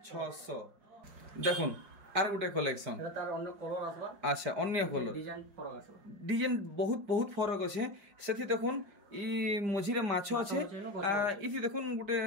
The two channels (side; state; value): left; late; 5.0 ms